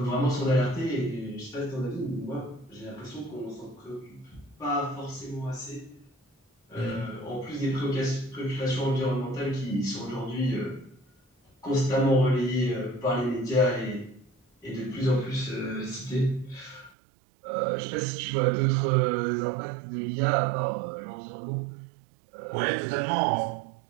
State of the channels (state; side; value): drops out; left; at 16.9 s